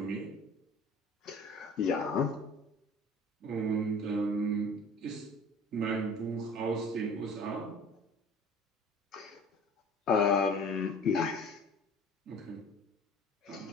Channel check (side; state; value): both; normal; correlation 0.45